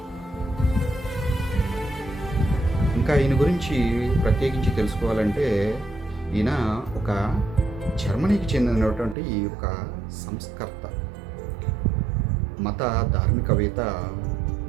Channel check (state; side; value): drops out; left; at 9.2 s